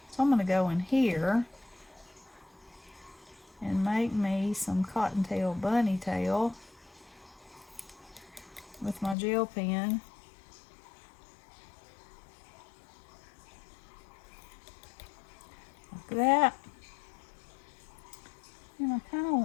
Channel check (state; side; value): drops out; right; at 9.2 s